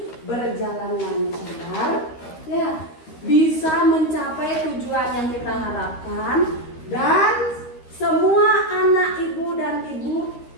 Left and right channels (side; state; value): right; late; 13 ms